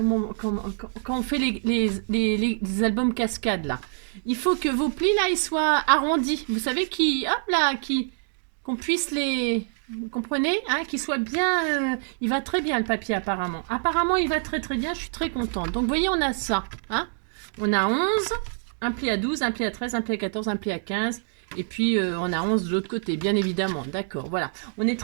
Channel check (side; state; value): left; silent; digital silence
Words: on fait les albums cascades, là. Il faut que vos plis, là, ils soient arrondis. Vous savez, qu'on puisse les... Vous comprenez, hein, qu'il soit bien... il va très bien, le papier, apparemment. Apparemment, il va très bien. Je suis très contente. Donc, vous voyez, on a ça. Hein, on a 11, un pli à 12, un pli à 13, un pli à 14, un pli à 15... Et puis, on a 11 de l'autre côté, bien évidemment. D'accord, voilà. On est